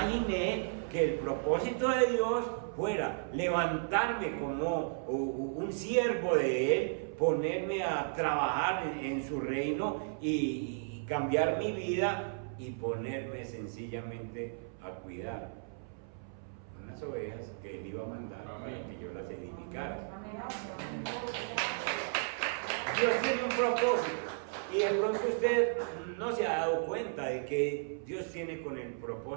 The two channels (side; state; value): left; silent; 55 dB below the other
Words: que el propósito de Dios fuera levantarme como un siervo de Él, ponerme a trabajar en su reino y cambiar mi vida y ponerme sencillamente a cuidar unas ovejas que Él iba a mandar para que yo las edificara. Dios tiene un propósito, y de pronto usted no se ha dado cuenta de que Dios tiene con el